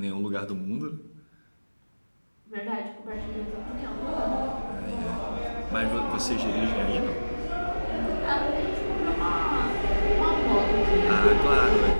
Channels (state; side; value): inverted; both; correlation -1.00